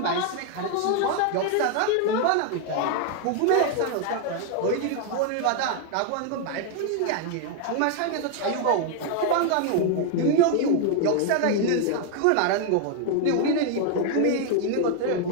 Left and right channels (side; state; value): both; different; correlation 0.00